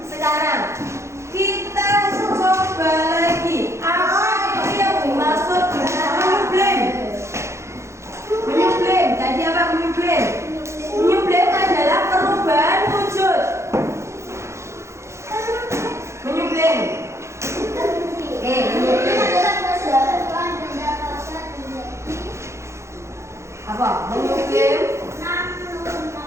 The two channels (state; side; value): late; left; 0.14 ms